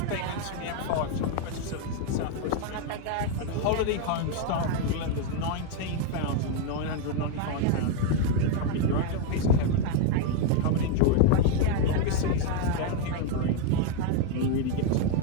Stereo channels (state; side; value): different; both; correlation 0.01